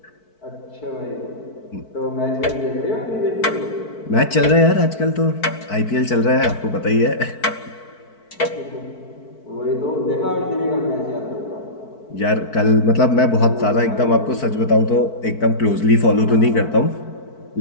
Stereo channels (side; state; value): right; late; 4.6 ms